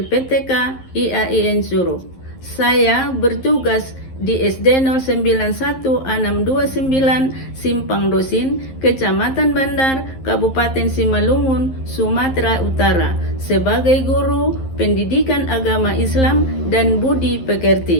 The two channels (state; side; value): late; right; 11 ms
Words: IAIN Suruh. Saya bertugas di SD 091 629 Simpang Dosin, Kecamatan Bandar, Kabupaten Simalungun, Sumatera Utara, sebagai guru pendidikan agama Islam dan budi